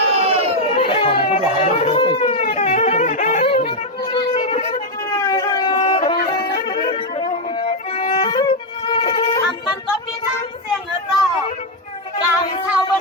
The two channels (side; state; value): both; normal; correlation 0.03